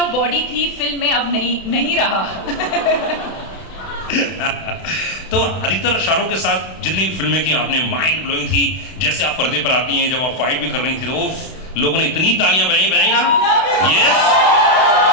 बॉडी थी फिल्म में अब नहीं रहा. तो अधिकतर शाहरुख के साथ जितनी फिल्में की आपने, माइंड ब्लोइंग थी. जैसे आप पर्दे पर आती हैं, जब आप फाइट भी कर रही थी, तो वो लोगों ने इतनी तालियां बजाई ना. यस.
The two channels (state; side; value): late; right; 32 ms